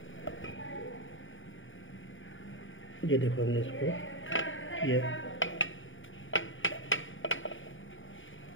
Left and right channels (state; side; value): late; right; 0.57 ms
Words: ये देखो हमने इसको किया।